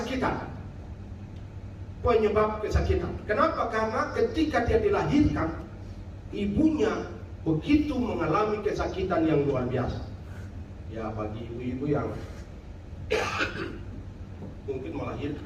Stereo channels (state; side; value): identical; both; correlation 1.00